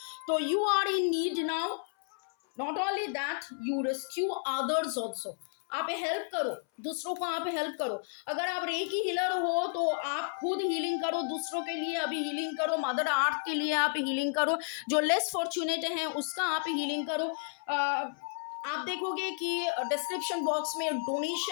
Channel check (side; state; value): right; silent; 57 dB below the other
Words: So you are in need now, not only that you rescue others also, आप help करो, दूसरों को आप help करो। अगर आप recce healer हो तो आप खुद हीलिंग करो, दूसरों के लिए अभी हीलिंग करो, मदर अर्थ के लिए आप हीलिंग करो, जो लेस फॉर्चुनेट हैं उसका आप हीलिंग करो। आप देखोगे कि डिस्क्रिप्शन बॉक्स में